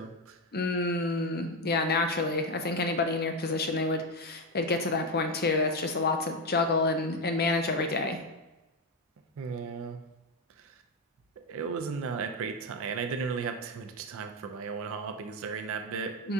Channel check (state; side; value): normal; both; correlation 0.10